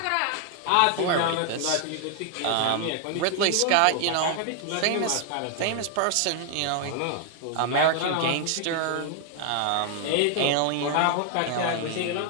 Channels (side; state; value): both; different; correlation 0.00